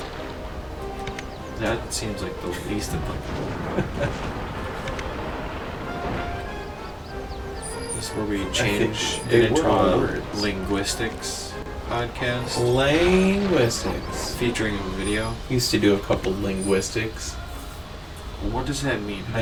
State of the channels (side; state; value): both; identical; correlation 1.00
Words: That seems like the least applicable. This is where we change they it into were all a words. linguistics podcast Linguistics. featuring a video. Used to do a couple linguistics. What does that mean? How